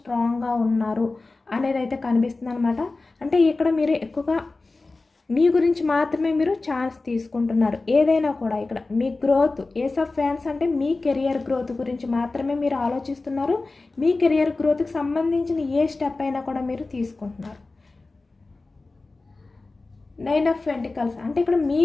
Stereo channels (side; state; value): right; quieter; 3.4 dB